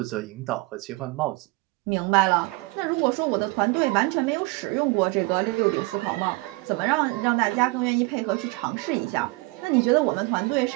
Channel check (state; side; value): quieter; left; 24.0 dB